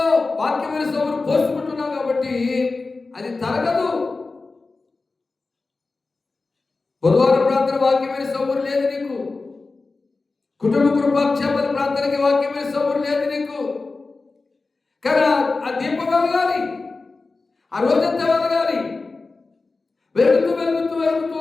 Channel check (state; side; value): quieter; right; 3.8 dB